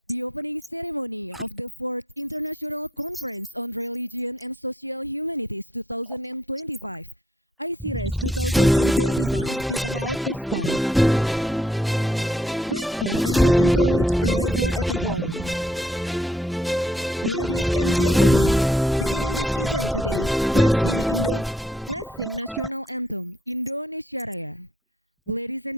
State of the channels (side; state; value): both; normal; correlation 0.68